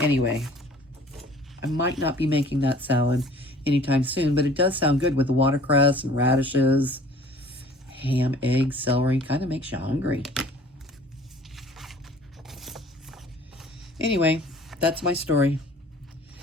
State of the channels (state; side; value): normal; both; correlation 0.50